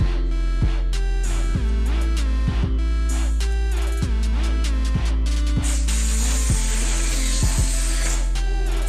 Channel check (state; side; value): identical; both; correlation 1.00